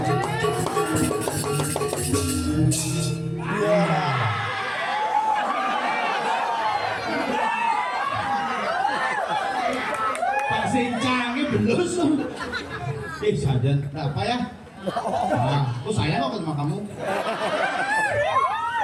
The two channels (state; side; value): identical; both; correlation 1.00